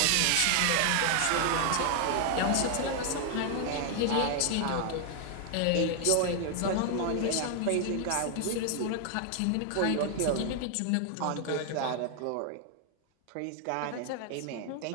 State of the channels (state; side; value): different; both; correlation 0.00